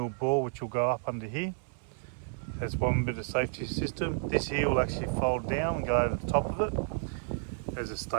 bore, which will go up under here. That's one bit of safety system. This here will actually fold down and go over the top of it as a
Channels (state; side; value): silent; left; 57 dB below the other